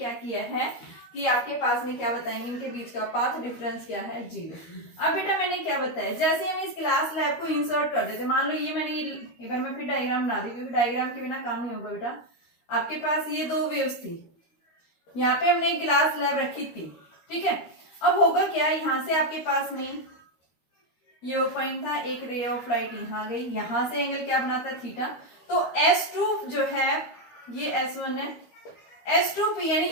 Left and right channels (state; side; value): late; right; 13 ms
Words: किया है कि आपके पास में क्या बताएंगे, इनके बीच का पाथ डिफरेंस क्या है, 0। अब बेटा मैंने क्या बताया, जैसे हम इस ग्लास स्लैब को इंसर्ट कर देते, मान लो ये मैंने एक बार मैं फिर डायग्राम बना दी क्योंकि डायग्राम के बिना काम नहीं होगा बेटा। आपके पास ये दो वेव्स थी, यहाँ पे हमने एक ग्लास स्लैब रखी थी, ठीक है। अब होगा क्या, यहाँ से आपके पास में ये पॉइंट था, एक रे ऑफ लाइट यहाँ गई, यहाँ से एंगल क्या बनाता है, थीटा। तो S2 जो है ये S1 है, S2p यानी